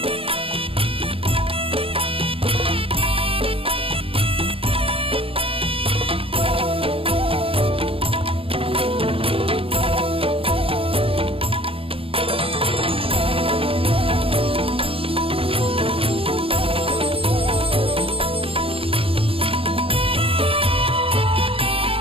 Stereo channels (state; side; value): late; left; 0.27 ms